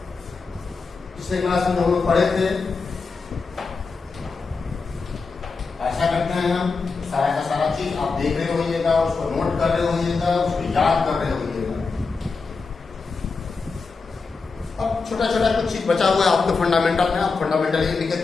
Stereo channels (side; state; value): right; quieter; 4.5 dB